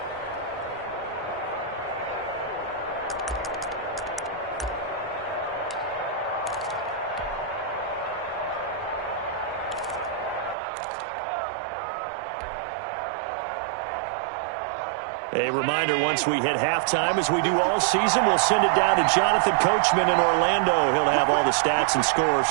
A reminder, once we hit halftime, as we do all season, we'll send it down to Jonathan Coachman in Orlando. He'll have all the stats and scores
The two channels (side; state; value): left; drops out; at 10.6 s